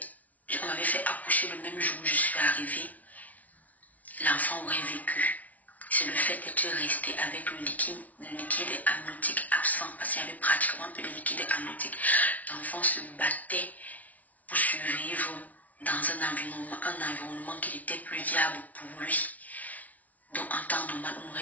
m'avait fait accoucher le même jour où je suis arrivée, l'enfant aurait vécu. C'est le fait d'être resté avec le liquide amniotique absent, parce qu'il y avait pratiquement plus de liquide amniotique. L'enfant se battait pour survivre dans un environnement qui était plus viable pour lui. Donc en temps normal, on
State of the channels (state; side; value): late; right; 0.072 ms